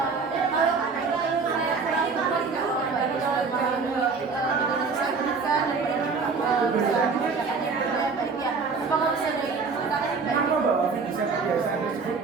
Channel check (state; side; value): quieter; left; 4.8 dB